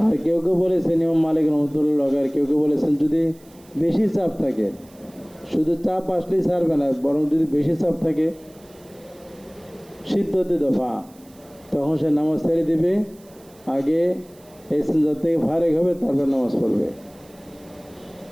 আর কেউ কেউ বলেছেন ইমাম মালিক রহমতুল্লাহ, আর কেউ কেউ বলেছেন যদি বেশি চাপ থাকে, শুধু চাপ আসলেই ছাড়বে না, বরং যদি বেশি চাপ থাকে সিদ্ধতে দফা, তখন সে নামাজ ছেড়ে দিবে, আগে ইস্তিনজা থেকে ফারেক হবে, তারপর নামাজ পড়বে।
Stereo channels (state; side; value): noise; right; hiss, 27 dB below the sound